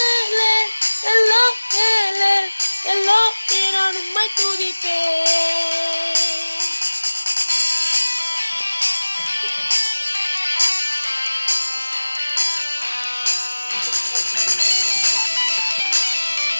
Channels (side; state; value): both; inverted; correlation -1.00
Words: ஹலோ ஹேலே ஹலோ நான் உம்மை துதிப்பேன்.